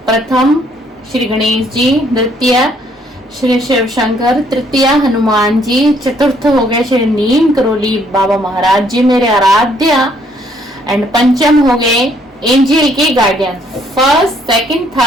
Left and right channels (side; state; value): both; normal; correlation 0.66